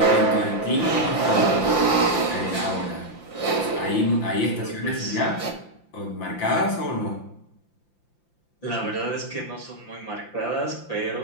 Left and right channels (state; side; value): late; right; 5.8 ms